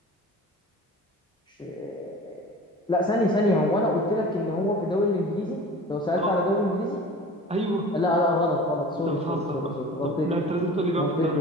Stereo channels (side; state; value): both; normal; correlation 0.40